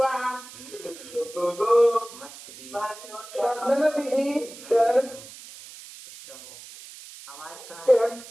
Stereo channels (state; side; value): noise; right; hiss, 16 dB below the sound